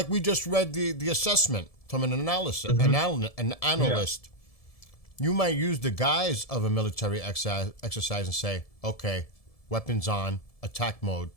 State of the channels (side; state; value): right; late; 1.7 ms